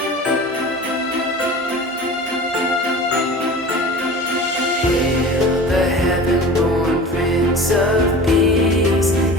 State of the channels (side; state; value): both; normal; correlation 0.37